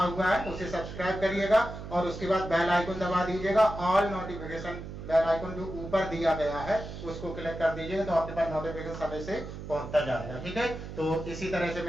हुआ है उसे सब्सक्राइब करिएगा, और उसके बाद बेल आइकन दबा दीजिएगा। ऑल नोटिफिकेशन बेल आइकन जो ऊपर दिया गया है उसको क्लिक कर दीजिएगा, तो आपके पास नोटिफिकेशन समय से पहुंचता जाएगा। ठीक है, तो इसी तरह से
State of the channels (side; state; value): right; noise; hum, 10 dB below the sound